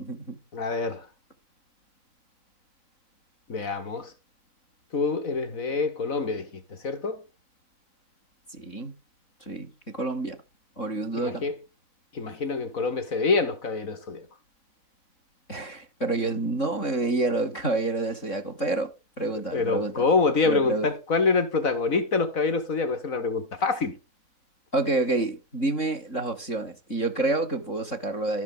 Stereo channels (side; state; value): right; late; 3.7 ms